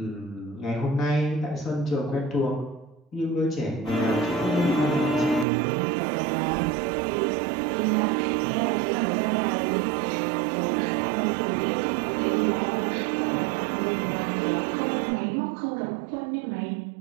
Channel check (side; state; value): left; drops out; at 5.5 s